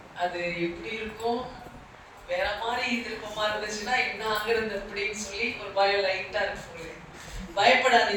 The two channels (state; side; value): identical; both; correlation 1.00